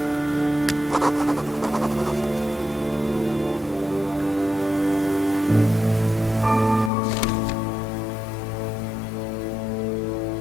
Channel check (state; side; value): drops out; right; at 6.9 s